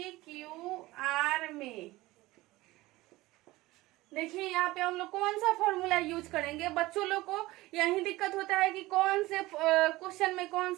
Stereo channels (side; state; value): left; quieter; 19.0 dB